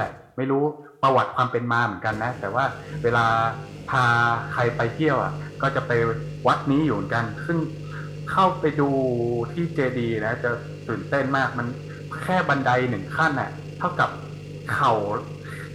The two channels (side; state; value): both; identical; correlation 1.00